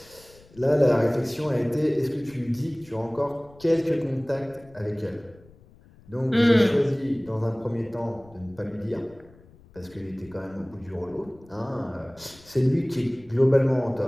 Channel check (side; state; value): left; noise; rumble, 25 dB below the sound